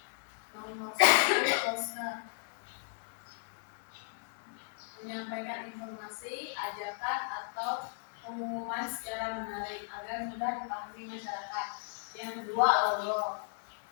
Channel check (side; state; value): right; silent; digital silence